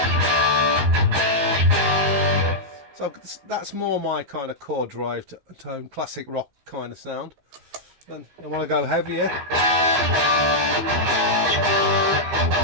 So that's more my kind of chord drive tone, classic rock kind of sound. Then I want to go heavier.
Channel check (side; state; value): left; late; 15 ms